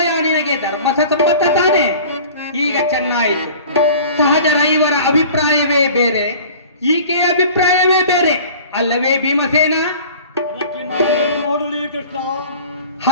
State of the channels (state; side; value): inverted; both; correlation -0.44